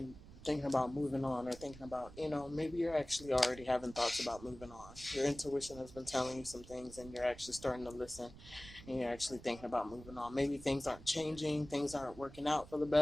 thinking about moving on, or thinking about, maybe you're actually already having thoughts about moving on. Your intuition has been telling you some things and you're actually starting to listen and you're actually thinking about moving on. Maybe things aren't changing, things aren't working out for the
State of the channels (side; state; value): right; noise; rumble, 17 dB below the sound